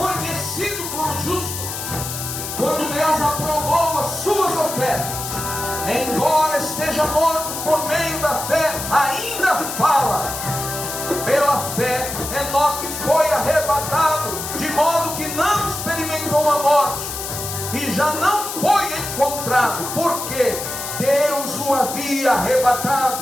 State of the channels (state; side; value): noise; left; hiss, 6 dB below the sound